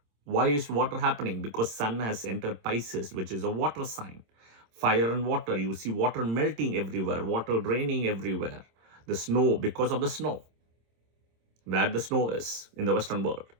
Why is water happening? Because Sun has entered Pisces, which is a water sign. Fire and water, you see water melting everywhere, water draining everywhere. The snow, because of the snow, where the snow is in the Western world.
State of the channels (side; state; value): left; late; 26 ms